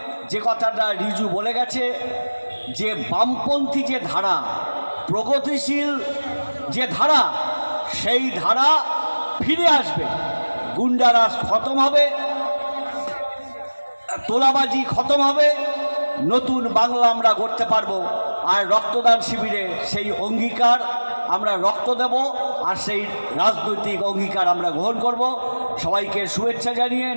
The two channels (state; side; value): inverted; both; correlation -1.00